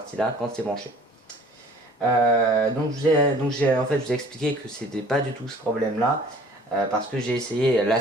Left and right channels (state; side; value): normal; both; correlation 0.50